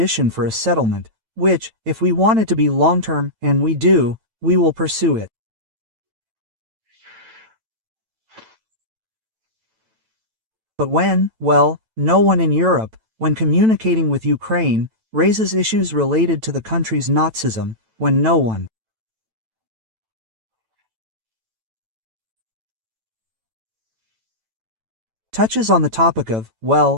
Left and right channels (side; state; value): left; late; 9.0 ms